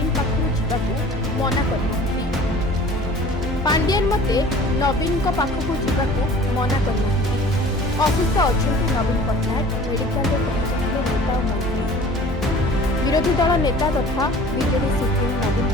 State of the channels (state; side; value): normal; both; correlation 0.46